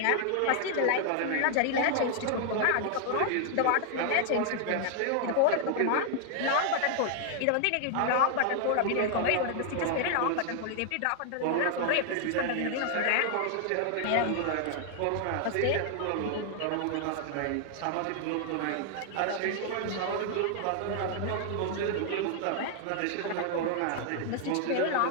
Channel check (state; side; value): different; both; correlation 0.00